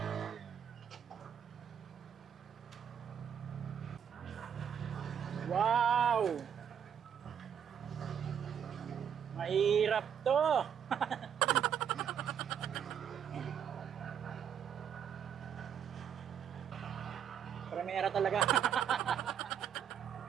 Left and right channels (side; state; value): left; quieter; 8.5 dB